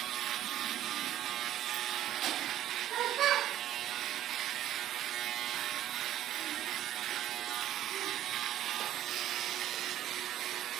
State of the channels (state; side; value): quieter; left; 12.5 dB